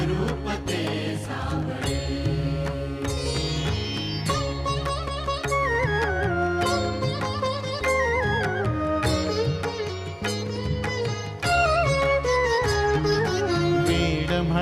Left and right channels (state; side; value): identical; both; correlation 1.00